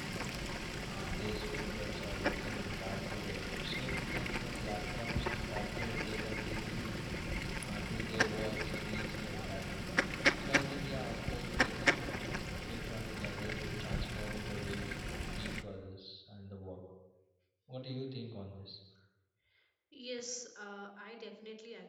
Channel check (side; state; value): both; identical; correlation 1.00